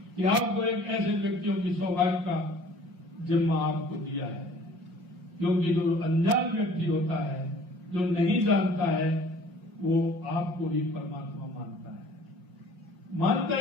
कि आपको एक ऐसे व्यक्तियों की सौभाग्य का जिम्मा आपको दिया है, क्योंकि जो अनजान व्यक्ति होता है, जो नहीं जानता है, वो आपको ही परमात्मा मानता है। मानता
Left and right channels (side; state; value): left; late; 5.5 ms